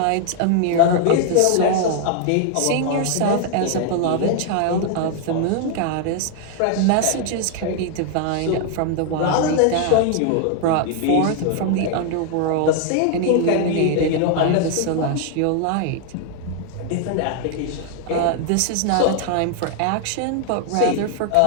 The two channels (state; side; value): different; both; correlation 0.00